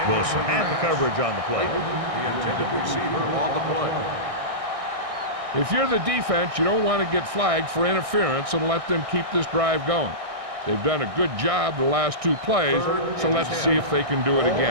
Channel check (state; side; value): late; left; 1.6 ms